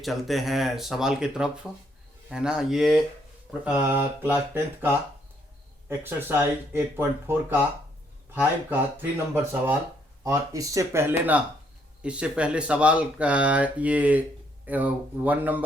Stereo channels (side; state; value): both; normal; correlation 0.70